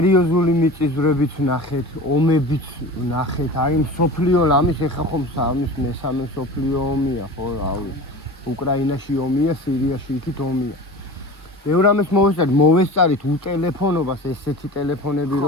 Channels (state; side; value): normal; both; correlation 0.35